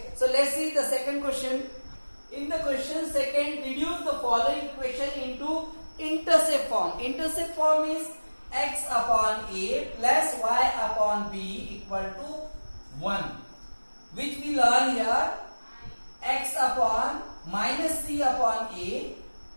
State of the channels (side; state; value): both; inverted; correlation -1.00